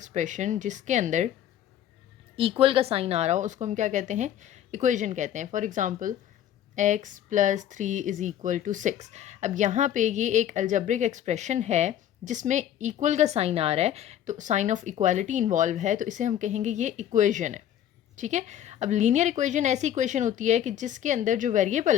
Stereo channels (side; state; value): right; quieter; 10.8 dB